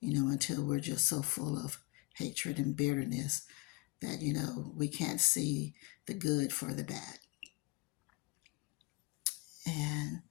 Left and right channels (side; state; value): right; quieter; 25.6 dB